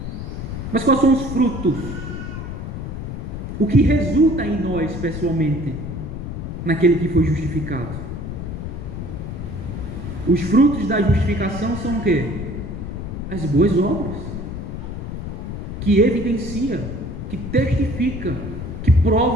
Mas quais são os frutos? O que resulta em nós pessoalmente, naquele que foi justificado? Os frutos da justificação são o quê? As boas obras, que evidencia, que testifica, que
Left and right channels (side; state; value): left; noise; rumble, 7 dB below the sound